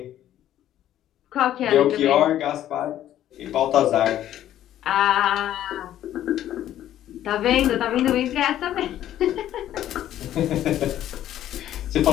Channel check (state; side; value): quieter; right; 12.1 dB